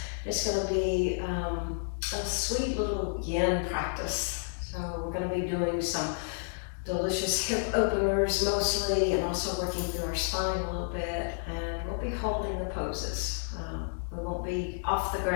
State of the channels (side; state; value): right; silent; digital silence